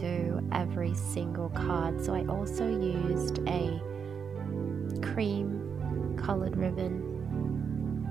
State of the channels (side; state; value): left; quieter; 6.6 dB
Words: every single card, so I also used a cream colored ribbon